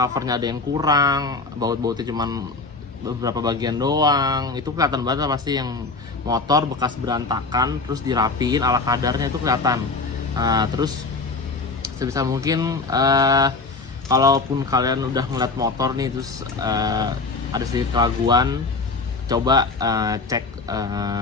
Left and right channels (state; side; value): quieter; right; 3.8 dB